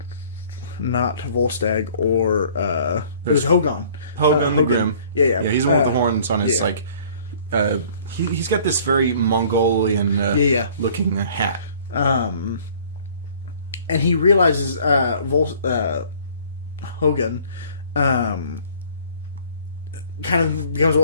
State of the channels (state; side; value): inverted; both; correlation -0.54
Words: Not Volstagg or it was Hogun. Hogun the Grim. Yeah. He's the one with the horns on his he's got this very Mongolian looking hat. And he realizes Hogun kind of becomes